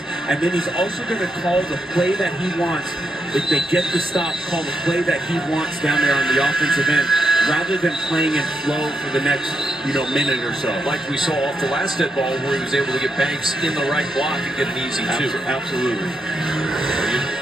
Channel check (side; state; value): both; normal; correlation 0.81